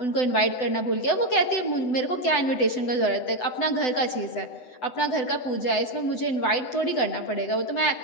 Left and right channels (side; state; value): right; late; 7.9 ms